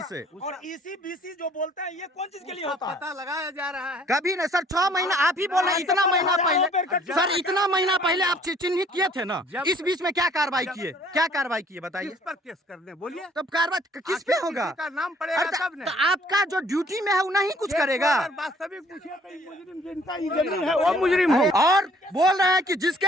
से। और EC-BC जो बोलते हैं, ये कौन चीज के लिए होता है? पता लगाया जा रहा है। कभी नहीं सर, 6 महीना आप ही बोल रहे हैं। इतना महीना पहले सर, इतना महीना पहले आप चिन्हित किए थे ना, इस बीच में क्या कार्रवाई किए? क्या कार्रवाई किए बताइए? किस पर केस करने बोलिए? तब कार्रवाई किस पे होगा? किसी का नाम पड़ेगा तब तो आपका जो ड्यूटी में है वो नहीं कुछ करेगा। वास्तविक पूछिए तो मुजरिम जिनका ये जमीन है वो मुजरिम हो। और बोल रहे हैं कि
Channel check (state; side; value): normal; both; correlation 0.59